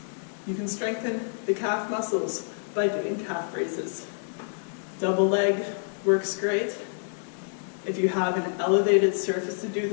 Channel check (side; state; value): right; silent; digital silence